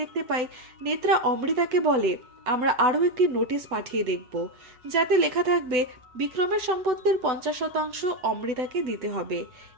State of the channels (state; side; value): late; left; 7.9 ms